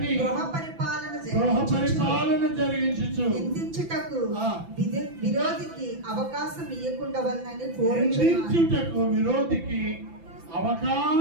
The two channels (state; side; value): late; left; 6.0 ms